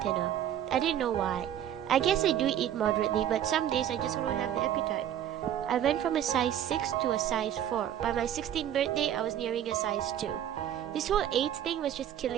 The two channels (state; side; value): quieter; left; 10.7 dB